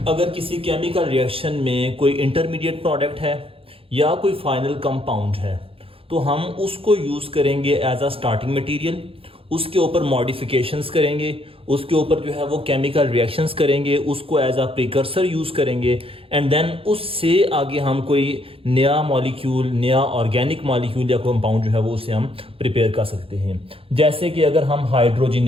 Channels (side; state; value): left; late; 0.27 ms